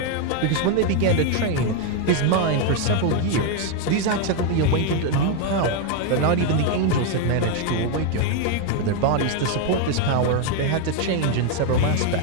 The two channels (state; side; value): different; both; correlation 0.01